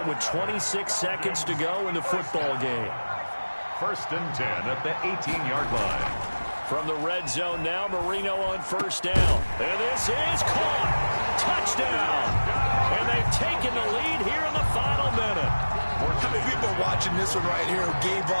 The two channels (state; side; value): inverted; both; correlation -1.00